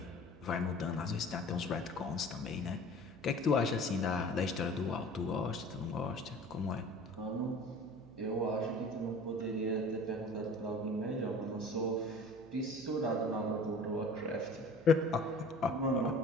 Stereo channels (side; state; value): right; noise; hum, 22 dB below the sound